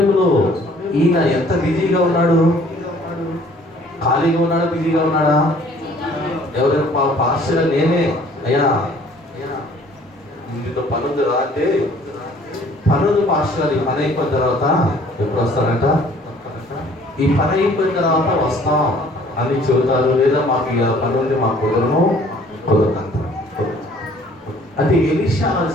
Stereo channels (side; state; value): both; normal; correlation 0.56